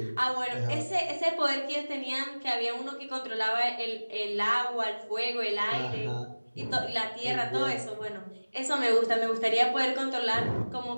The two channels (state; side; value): inverted; both; correlation -1.00